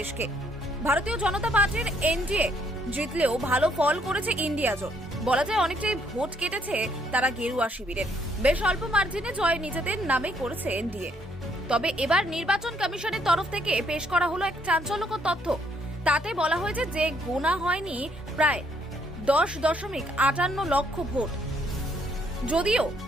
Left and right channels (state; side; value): normal; both; correlation 0.69